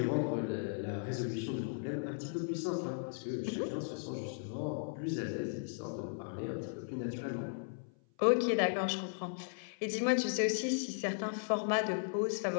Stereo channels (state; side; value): silent; right; 53 dB below the other